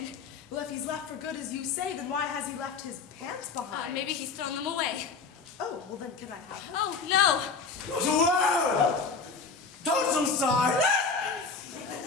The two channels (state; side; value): quieter; right; 4.8 dB